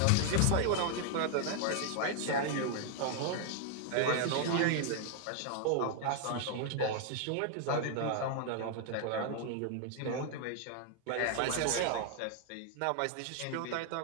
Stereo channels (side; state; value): both; different; correlation 0.00